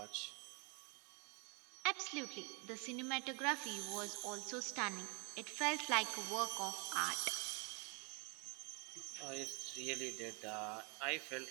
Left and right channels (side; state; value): left; quieter; 33.1 dB